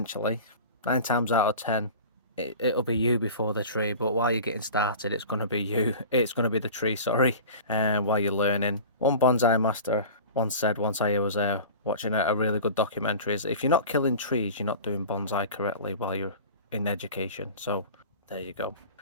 9 times out of 10, it'll be you before the tree. But while you're getting started, it's going to be you. It's going to be the tree, sorry. While you're learning. One bonsai master once said, once I was watching a really good documentary, is if you're not killing trees, you're not doing bonsai correctly while you're in education. So there you go.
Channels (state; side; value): inverted; both; correlation -0.37